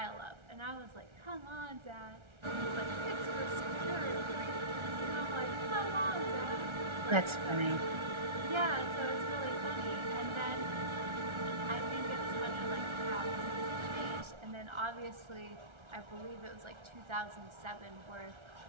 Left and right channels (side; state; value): left; late; 1.3 ms